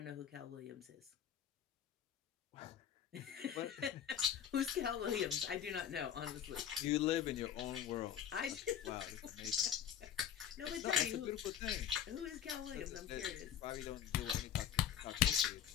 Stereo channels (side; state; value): right; quieter; 9.4 dB